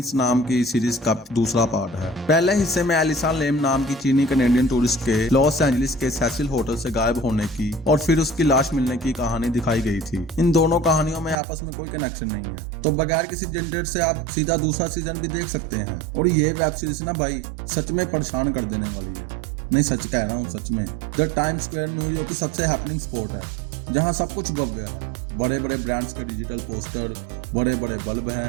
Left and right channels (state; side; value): drops out; left; at 11.4 s